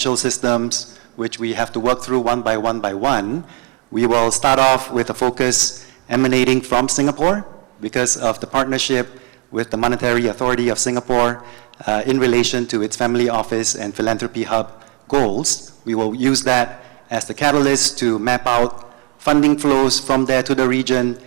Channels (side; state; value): left; quieter; 34.3 dB